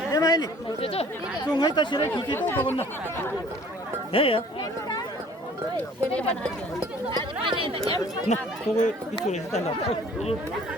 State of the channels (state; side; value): normal; both; correlation 0.53